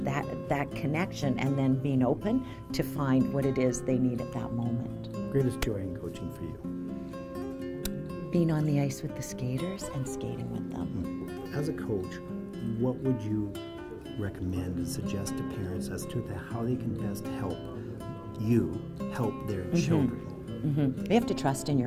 that connection, and then being open to find what it is they need at that moment. Greatest joy in coaching for you? Being on the ice with the skaters and skating with them. As a coach, what would you recommend and suggest to parents as to how they can best help their children You have to trust in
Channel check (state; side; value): identical; both; correlation 1.00